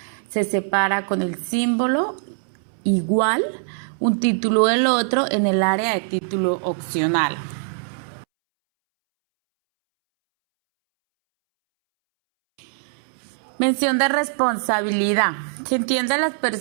se separa con el símbolo igual un título del otro en el área de título opcional. Mención de responsabilidad. Se entiende a las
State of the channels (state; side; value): silent; left; 64 dB below the other